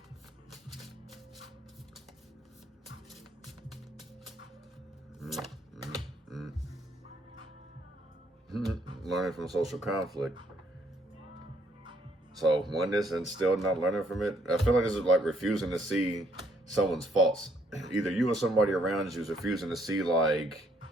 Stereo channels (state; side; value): normal; both; correlation 0.68